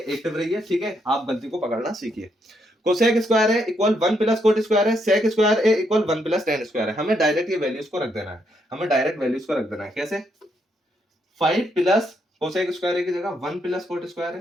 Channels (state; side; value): normal; both; correlation 0.76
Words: रहिए। ठीक है, आप गलती को पकड़ना सीखिए। Cosec square A equal 1 plus cot square है, sec square A equal 1 plus tan square है। हमें डायरेक्ट ये वैल्यूज को रख देना है, हमें डायरेक्ट वैल्यूज को रख देना है। कैसे, 5 प्लस कोसेक स्क्वायर ए की जगह 1 प्लस कोट स्क्वायर